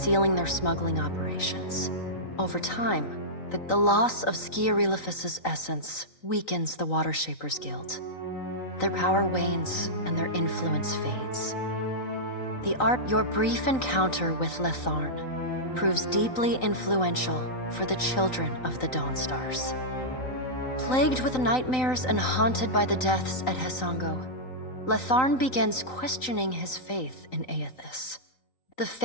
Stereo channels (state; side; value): late; right; 3.9 ms